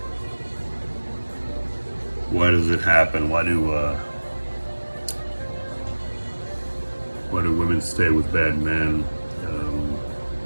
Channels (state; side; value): inverted; both; correlation -1.00